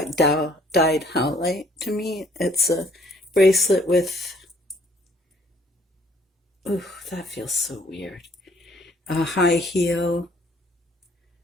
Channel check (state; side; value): normal; both; correlation 0.61